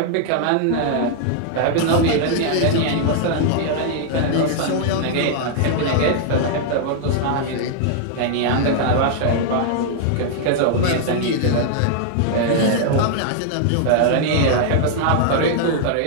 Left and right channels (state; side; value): different; both; correlation -0.01